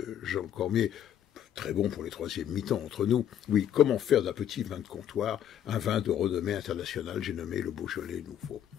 Jean Cormier, très bon pour les troisièmes mi-temps entre nous. Oui, comment faire d'un petit vin de comptoir un vin de renommée internationale, j'ai nommé le Beaujolais Nouveau.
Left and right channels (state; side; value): quieter; right; 10.2 dB